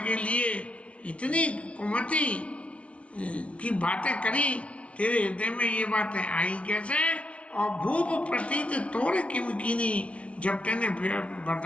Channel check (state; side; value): late; right; 0.062 ms